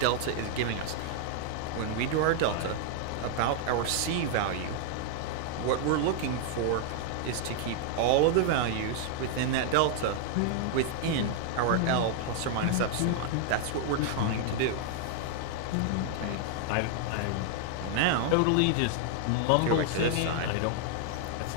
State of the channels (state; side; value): different; both; correlation 0.00